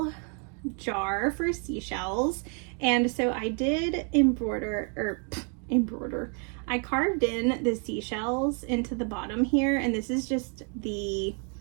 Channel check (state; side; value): quieter; left; 39.9 dB